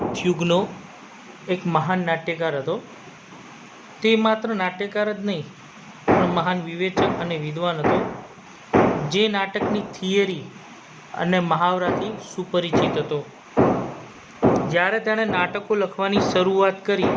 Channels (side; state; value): both; identical; correlation 1.00